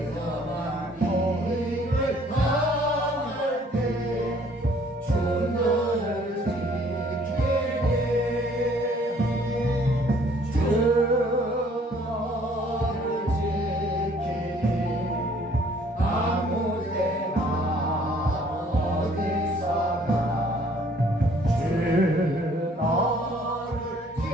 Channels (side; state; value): both; normal; correlation 0.59